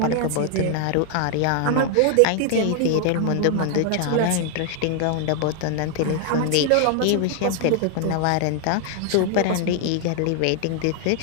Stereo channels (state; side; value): different; both; correlation 0.00